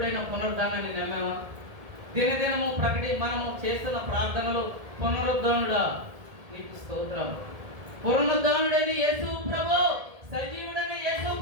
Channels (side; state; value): left; late; 1.7 ms